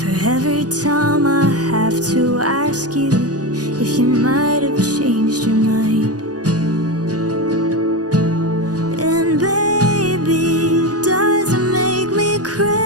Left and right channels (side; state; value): left; late; 0.68 ms